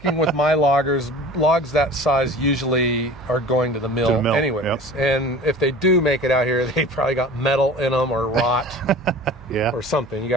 with my loggers, logs that size usually are going to the mill, anyways. Yep. And if they do make it out here, they probably got metal in them or rot or something. You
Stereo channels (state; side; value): noise; right; hum, 22 dB below the sound